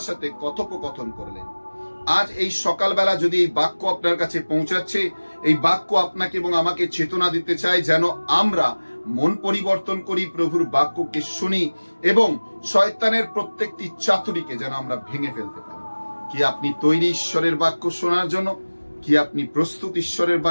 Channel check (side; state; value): both; inverted; correlation -1.00